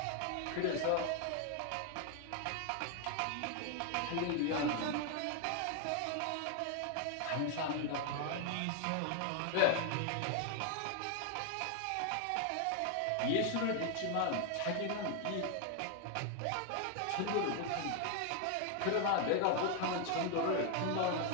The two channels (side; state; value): both; different; correlation 0.00